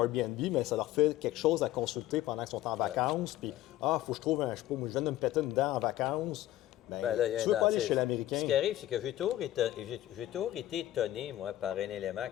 Airbnb, mais ça leur fait quelque chose à consulter pendant qu'ils sont en vacances. Puis, faut que je trouve je sais pas, moi, je viens de me péter une dent en vacances. Ben, là, tu veux pas aller chez l'Américain. Ce qui arrive, c'est que j'ai toujours été étonné, moi, par un élément,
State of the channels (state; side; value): quieter; right; 14.3 dB